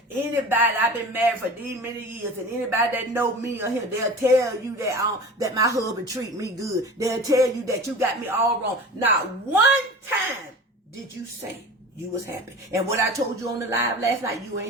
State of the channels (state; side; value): normal; both; correlation 0.37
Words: anybody, I've been married for these many years, and anybody that know me or him, they'll tell you that my husband treat me good. They'll tell you that you got me all wrong. Not one time did you say you was happy? And what I told you on the live last night, you